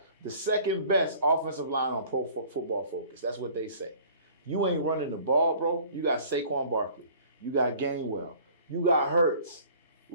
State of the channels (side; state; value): both; inverted; correlation -0.50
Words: the second best offensive line on Pro Football Focus. That's what they say. You ain't running the ball, bro. You got Saquon Barkley. You got Gainwell. You got Hurts.